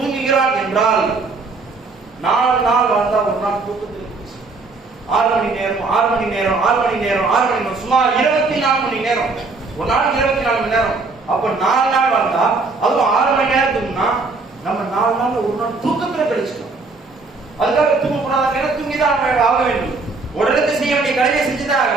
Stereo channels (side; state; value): left; quieter; 3.9 dB